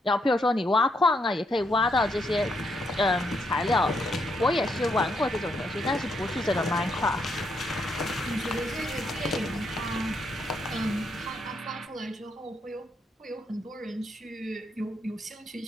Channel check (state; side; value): normal; both; correlation 0.77